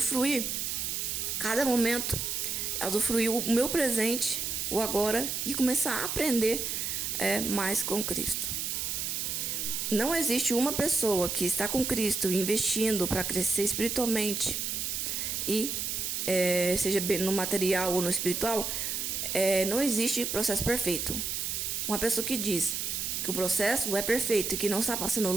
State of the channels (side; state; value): right; noise; hiss, 2 dB below the sound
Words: cada momento, a usufruir o meu presente, o agora, e começar a aprender mais com Cristo. Não existe uma pessoa que está com Cristo investindo para crescer espiritualmente e seja no material ou no espiritual, não existe processo perfeito. Uma pessoa que diz que o processo é perfeito e que não está passando